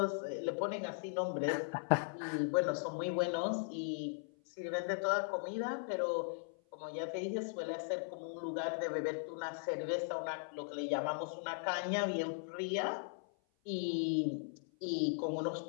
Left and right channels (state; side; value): silent; right; 52 dB below the other